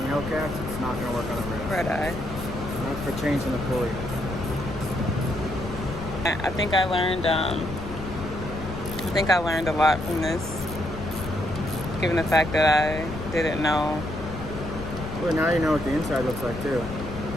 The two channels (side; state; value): left; noise; rumble, 9 dB below the sound